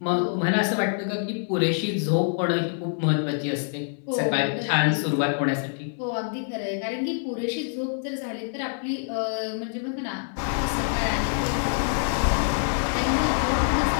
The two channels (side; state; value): right; silent; 61 dB below the other